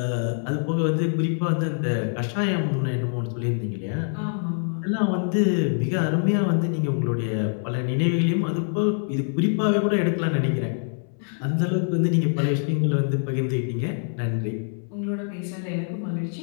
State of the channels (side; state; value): right; silent; 62 dB below the other